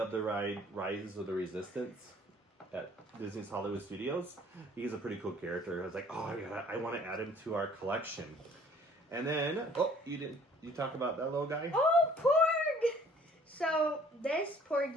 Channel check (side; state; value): both; normal; correlation 0.56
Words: the ride Rise of the Resistance at Disney's Hollywood Studios. He's a pretty cool character. I was like, oh, I want to add him to our collection. And then, you talk about that little guy? Oh, Porg! So, this